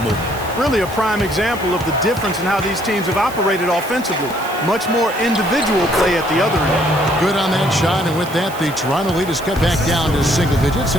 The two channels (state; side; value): noise; right; hiss, 16 dB below the sound